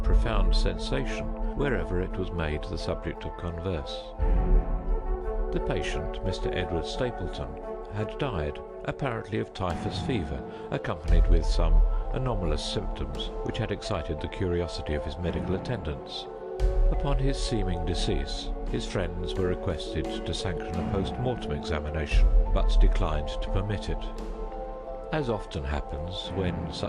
sensation wherever it was made the subject of converse. The patient, Mr. Edward Stapleton, had died, apparently of typhus fever, accompanied with some anomalous symptoms which had excited the curiosity of his medical attendants. Upon his seeming decease, his friends were requested to sanction a post-mortem examination, but declined to permit it. As often happens when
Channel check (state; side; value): identical; both; correlation 1.00